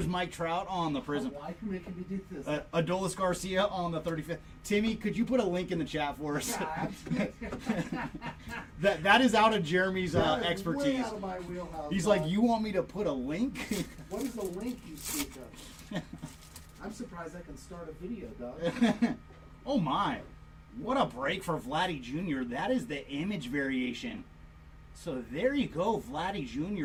Mike Trout on the prism. Why are you making me do this? Adolis Garcia on the 35th. Timmy, could you put a link in the chat for us? that is out of Jeremy's expertise. Way out of my wheelhouse. He's like, you want me to put a link? What is the link you speak of? I'm surprised I can start a video, dog. Oh my. What a break for Vladdy Jr. That is the image variation. So there you go, Vladdy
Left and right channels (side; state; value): both; identical; correlation 1.00